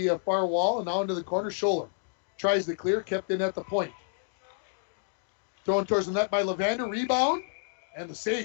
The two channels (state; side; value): silent; right; digital silence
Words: far wall and now into the corner. Scholler tries to clear. Kept in at the point. Thrown towards the net by Levander. Rebound. And the